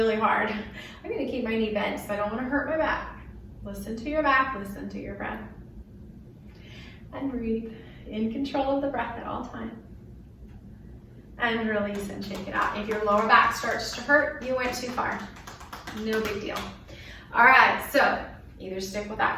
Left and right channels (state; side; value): identical; both; correlation 1.00